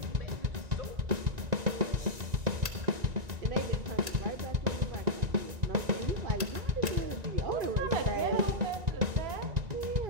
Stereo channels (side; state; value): left; late; 1.9 ms